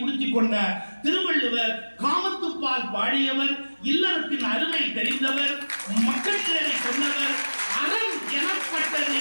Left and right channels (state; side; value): inverted; both; correlation -1.00